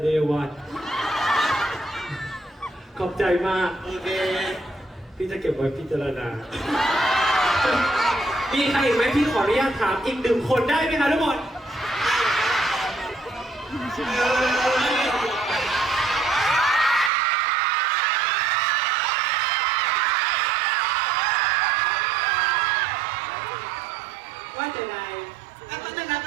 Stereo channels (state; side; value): drops out; left; at 17.1 s